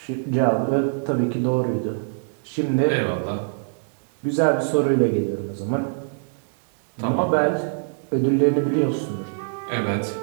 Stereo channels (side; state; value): left; silent; digital silence